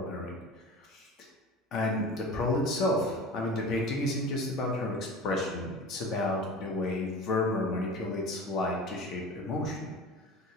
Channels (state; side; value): normal; both; correlation 0.36